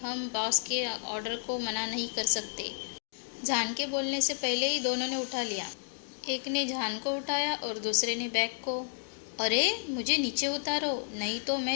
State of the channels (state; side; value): silent; right; digital silence